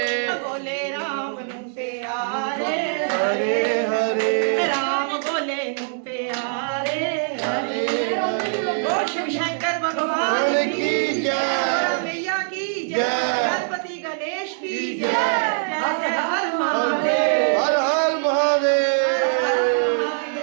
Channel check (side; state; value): left; silent; digital silence